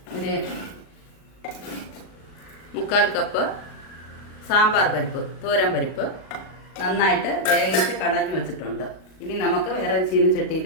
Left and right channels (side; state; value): right; late; 38 ms